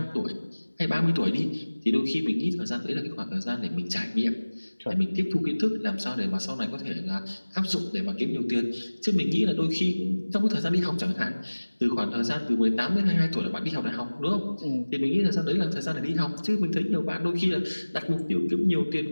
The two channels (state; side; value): inverted; both; correlation -1.00